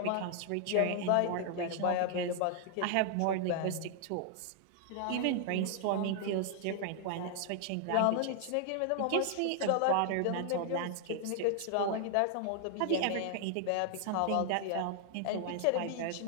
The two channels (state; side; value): different; both; correlation 0.00